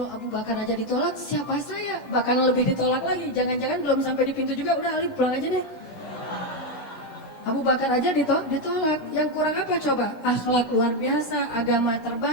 Abu Bakar aja ditolak, siapa saya? Bahkan lebih ditolak lagi. Jangan-jangan belum sampai di pintu juga, udah Ali pulang aja deh. Abu Bakar aja ditolak. Yang kurang apa coba? Akhlak luar biasa, agama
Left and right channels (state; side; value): late; right; 16 ms